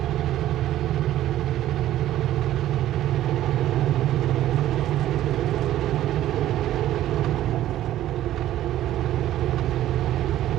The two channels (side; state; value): left; quieter; 13.3 dB